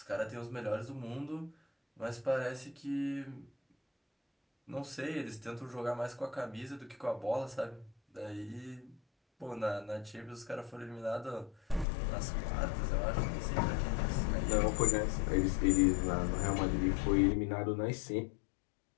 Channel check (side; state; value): right; drops out; at 11.9 s